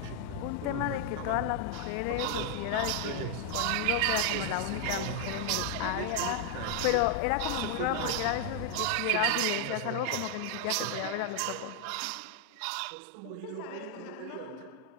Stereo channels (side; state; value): both; different; correlation 0.00